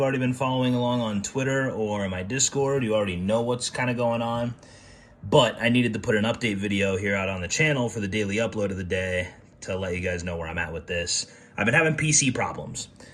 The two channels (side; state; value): both; identical; correlation 1.00